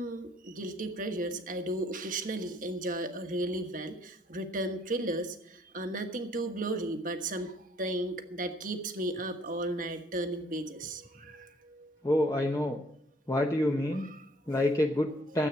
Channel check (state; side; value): normal; both; correlation 0.61